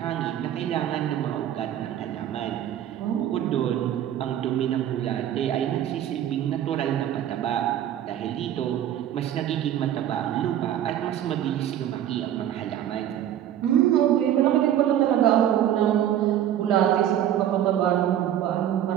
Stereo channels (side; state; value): left; quieter; 11.1 dB